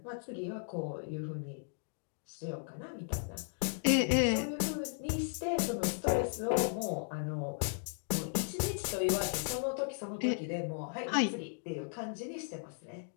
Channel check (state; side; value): silent; right; digital silence